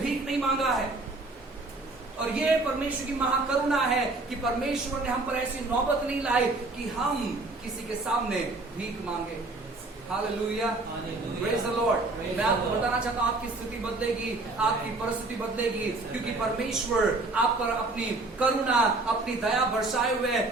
नहीं मांगा है। और ये परमेश्वर की महाकरुणा है कि परमेश्वर ने हम पर ऐसी नौबत नहीं लाई कि हम किसी के सामने भीख मांगे। Hallelujah, praise the Lord. मैं आपको बताना चाहता हूं, आपकी स्थिति बदलेगी, आपकी परिस्थिति बदलेगी, क्योंकि परमेश्वर आप पर अपनी करुणा, अपनी दया बरसाए हुए।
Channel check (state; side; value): quieter; left; 3.2 dB